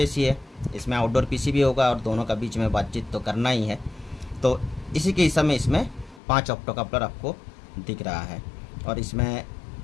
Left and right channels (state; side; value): drops out; right; at 6.2 s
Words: है, इसमें आउटडोर पीसी भी होगा और दोनों का बीच में बातचीत तो करना ही है। तो इसी के हिसाब में इसमें 5 ऑप्टोकपलर आपको दिख रहा है और इसमें